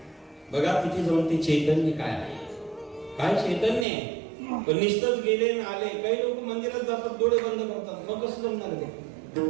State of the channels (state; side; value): drops out; left; at 3.9 s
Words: बघा तिथे जाऊन ते चैतन्य काय आहे, काय चैतन्य आहे. पण निस्तच गेले आणि आले. काही लोक मंदिरात जातात, डोळे बंद करतात, मग कसं जमणार ते?